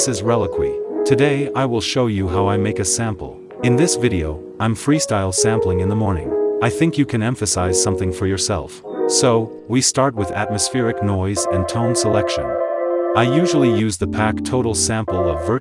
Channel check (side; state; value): both; identical; correlation 1.00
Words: is RELIQUI. Today I will show you how I make a sample. In this video, I'm freestyle sampling in the morning. I think you can emphasize something for yourself. So, we start with atmospheric noise and tone selection. I usually use the pack total sample of